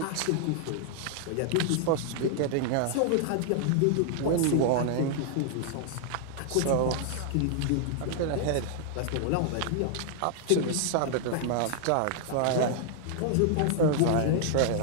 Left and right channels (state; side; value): different; both; correlation -0.01